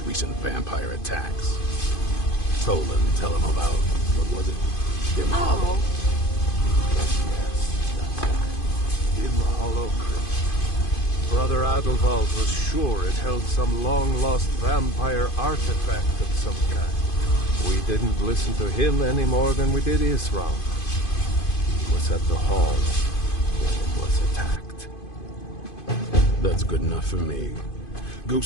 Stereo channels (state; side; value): late; right; 2.5 ms